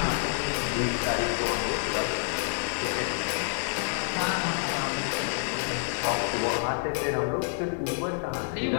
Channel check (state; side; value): silent; right; 59 dB below the other